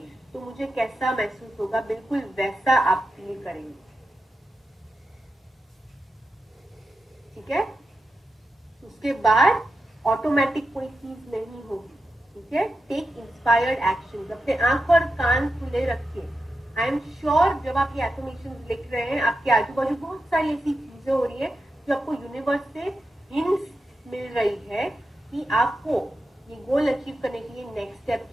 तो मुझे कैसा महसूस होगा, बिल्कुल वैसा आप फील करेंगे, ठीक है। उसके बाद ऑटोमेटिक कोई चीज नहीं होगी, ठीक है। टेक इंस्पायर्ड एक्शन, अपने आंख और कान खुले रखिए। आई एम श्योर जब आप ये एफर्मेशन लिख रहे हैं, आपके आजू बाजू बहुत सारी ऐसी चीजें हो रही है जो आपको यूनिवर्स से हिंट्स मिल रही है कि आपको ये गोल अचीव करने के लिए नेक्स्ट स्टेप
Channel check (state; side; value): normal; both; correlation 0.89